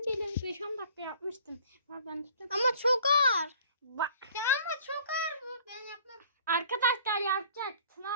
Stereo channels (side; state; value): both; inverted; correlation -0.53